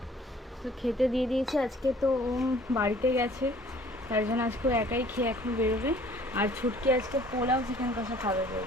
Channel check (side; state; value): both; normal; correlation 0.54